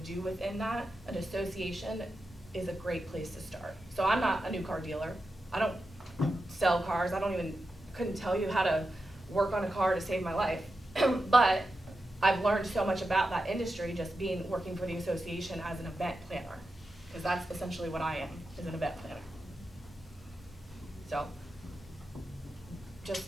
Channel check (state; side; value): normal; both; correlation 0.90